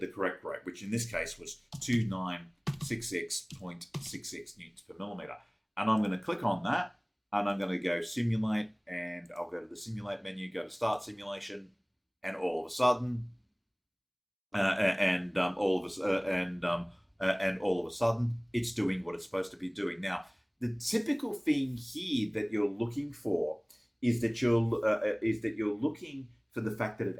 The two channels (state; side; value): identical; both; correlation 1.00